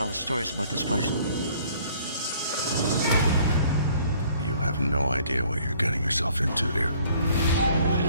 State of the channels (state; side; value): inverted; both; correlation -0.58